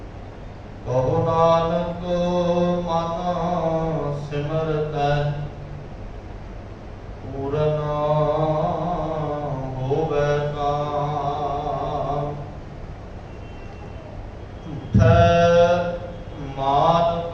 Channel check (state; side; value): identical; both; correlation 1.00